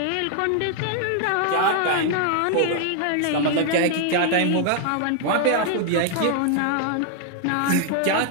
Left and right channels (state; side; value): different; both; correlation 0.00